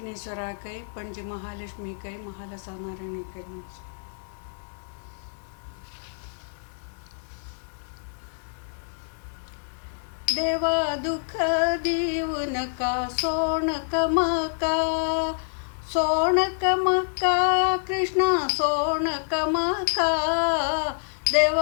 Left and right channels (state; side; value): silent; right; digital silence